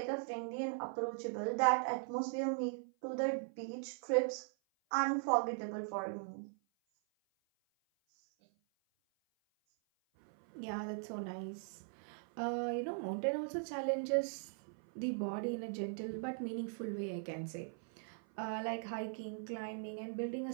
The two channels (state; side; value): silent; left; 51 dB below the other